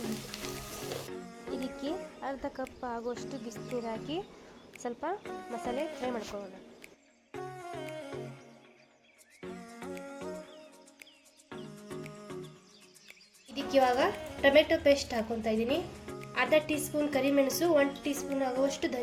ಇದಕ್ಕೆ ಅರ್ಧ ಕಪ್ ಆಗುವಷ್ಟು ಬಿಸಿನೀರು ಹಾಕಿ ಸ್ವಲ್ಪ ಮಸಾಲೆ ಫ್ರೈ ಮಾಡ್ಕೊಳ್ಳೋಣ. ಇದಕ್ಕೆ ಇವಾಗ ಟೊಮೆಟೊ ಪೇಸ್ಟ್ ಹಾಕೊತಾ ಇದ್ದೀನಿ, ಅರ್ಧ ಟೀ ಸ್ಪೂನ್ ಕರಿಮೆಣಸು, 1 ಟೀ ಸ್ಪೂನ್ ಆಗುವಷ್ಟು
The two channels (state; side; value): identical; both; correlation 1.00